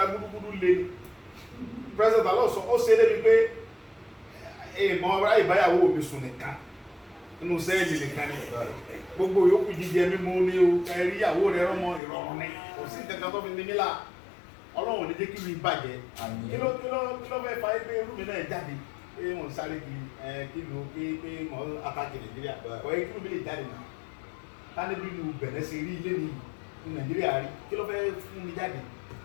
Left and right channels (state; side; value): drops out; right; at 12.0 s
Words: gbúdúgbúdú lé president Talon sọ ó ṣe é débi pé èèmọ̀ ọ̀rá ìbáyàwó mi sùn nìkan nínú sẹ́ẹ̀lì nìkan ni gbogbo yòókù jíjẹ mímú ní o ẹ̀rí ìyàwó rẹ̀ rọ́mọ ìrọ̀rùn ni kò sí ìtẹ̀kàn tó fi ní mílà Ọlọ́run ní jẹ́ kí mi bàjẹ́ kí ló fẹ́ fa ẹgbẹ́ irú mi náà jáde pé wọ́n sáré kí ló pé mọ́ àtàkì Nàìjíríà kọ́ ẹ kí ló lè jáde nà tani bí lu Bẹ̀nẹ̀ ṣe rí ilé ní Nàìjíríà rí kí ló fẹ́ fún mi jáde.